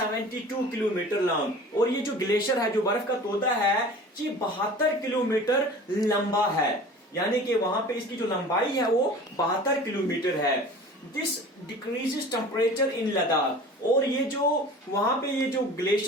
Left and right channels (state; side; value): normal; both; correlation 0.41